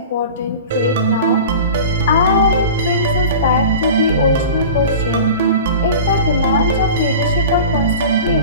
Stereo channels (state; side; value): inverted; both; correlation -0.36